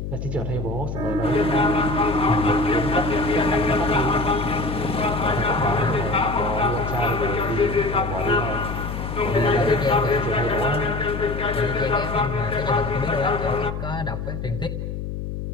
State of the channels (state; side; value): noise; left; hum, 6 dB below the sound